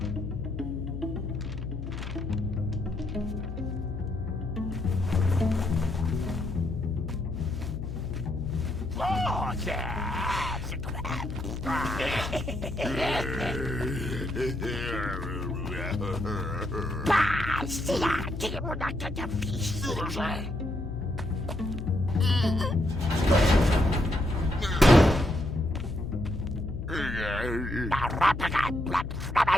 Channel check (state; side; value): noise; left; hum, 7 dB below the sound